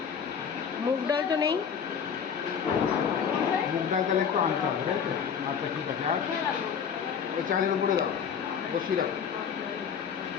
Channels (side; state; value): right; quieter; 7.2 dB